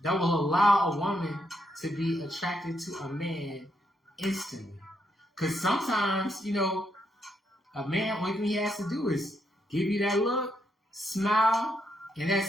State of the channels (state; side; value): normal; both; correlation 0.78